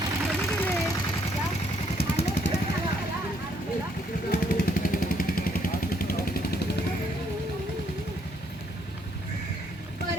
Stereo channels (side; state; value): both; normal; correlation 0.70